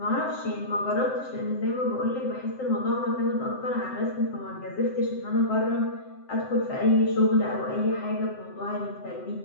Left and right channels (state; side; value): late; right; 7.7 ms